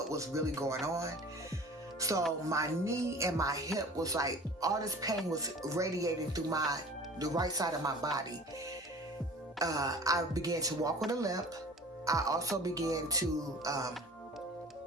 was really going on. So my knee and my hip was like, all this pain was radiating through the right side of my body. I began to walk with a limp. I also began to,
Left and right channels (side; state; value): both; normal; correlation 0.43